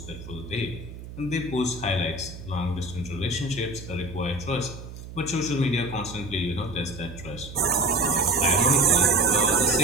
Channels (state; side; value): noise; right; hum, 13 dB below the sound